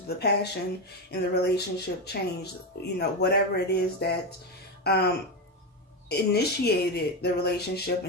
The passion in the relationship changed. Whatever it is that initiated the relationship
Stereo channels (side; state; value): both; normal; correlation 0.13